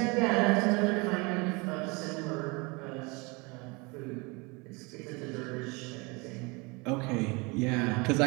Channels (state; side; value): quieter; left; 27.7 dB